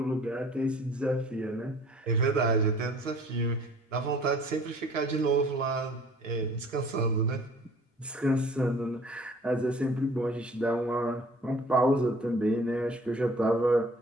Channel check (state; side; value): normal; both; correlation 0.52